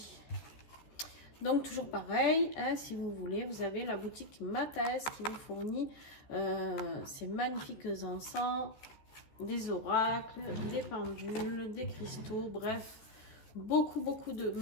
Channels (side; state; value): right; late; 14 ms